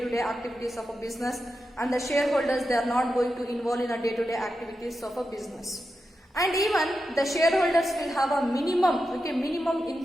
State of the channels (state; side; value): normal; both; correlation 0.89